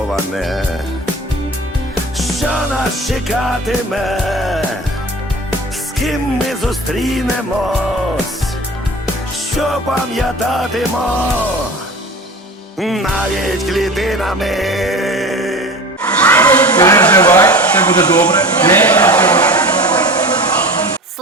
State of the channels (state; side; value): normal; both; correlation 0.36